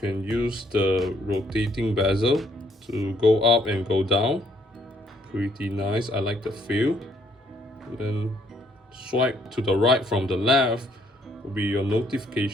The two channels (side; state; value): both; normal; correlation 0.68